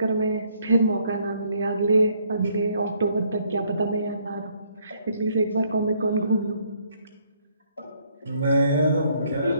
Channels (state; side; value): inverted; both; correlation -0.68